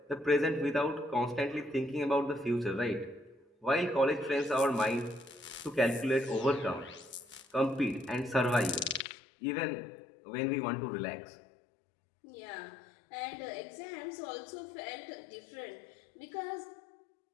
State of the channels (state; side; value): drops out; right; at 9.1 s